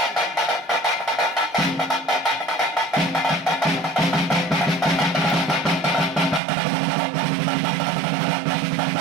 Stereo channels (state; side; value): drops out; left; at 6.4 s